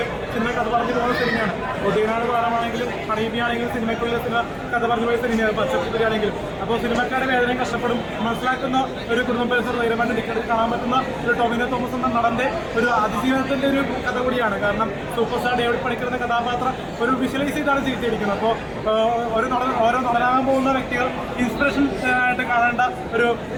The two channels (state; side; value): identical; both; correlation 1.00